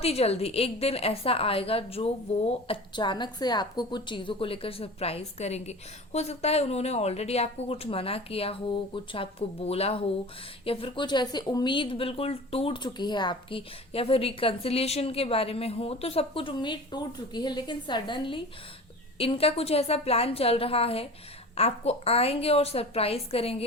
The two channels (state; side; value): normal; both; correlation 0.37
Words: ही जल्दी एक दिन ऐसा आएगा जो वो अचानक से आपको कुछ चीज़ों को लेकर सरप्राइज करेंगे। हो सकता है उन्होंने ऑलरेडी आपको कुछ मना किया हो, कुछ आपको बोला हो, या फिर कुछ ऐसी उम्मीद बिल्कुल टूट चुकी है आपकी, या फिर रिकन्सिलिएशन के बारे में हो, तो सब कुछ उम्मीद टूट चुकी है, लेकिन सडनली इनका कुछ ऐसा प्लान चल रहा है, आपको आएंगे और सरप्राइज